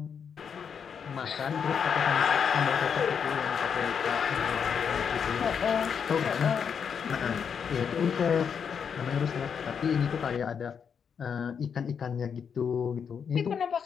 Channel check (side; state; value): right; quieter; 7.0 dB